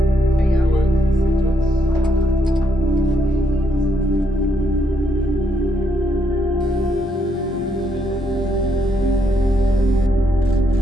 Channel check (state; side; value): normal; both; correlation 0.76